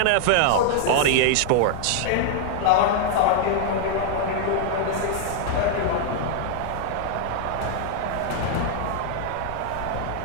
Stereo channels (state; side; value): different; both; correlation -0.01